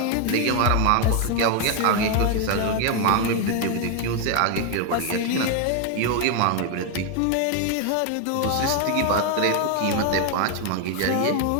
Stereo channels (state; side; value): different; both; correlation 0.01